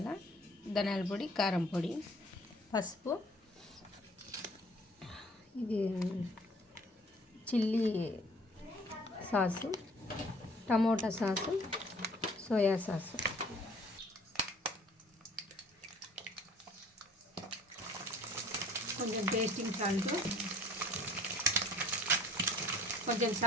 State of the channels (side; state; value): both; normal; correlation 0.52